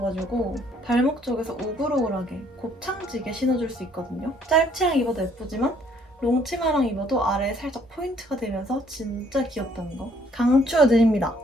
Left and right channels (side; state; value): both; normal; correlation 0.64